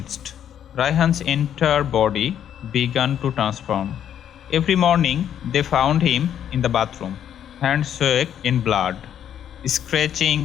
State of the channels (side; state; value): right; quieter; 9.7 dB